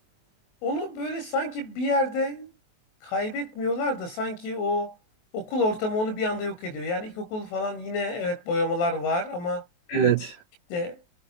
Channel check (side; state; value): right; late; 21 ms